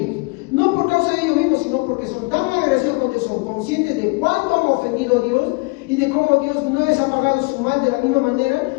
No por causa de ellos mismos, sino porque son tan agresivos, porque son conscientes de cuánto han ofendido a Dios y de cómo Dios no les ha pagado su mal de la misma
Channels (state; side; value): quieter; right; 27.3 dB